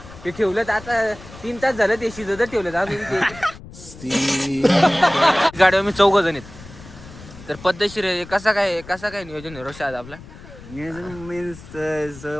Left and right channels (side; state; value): left; noise; rumble, 17 dB below the sound